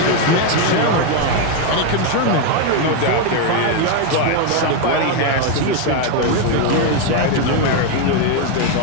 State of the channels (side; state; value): both; different; correlation 0.02